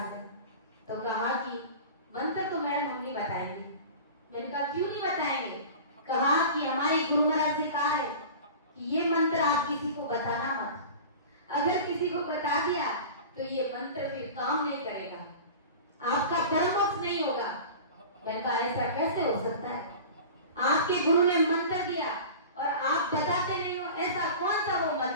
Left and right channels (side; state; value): both; inverted; correlation -0.36